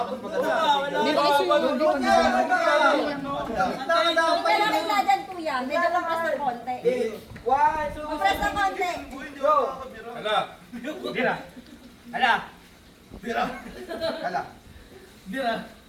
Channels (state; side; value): identical; both; correlation 1.00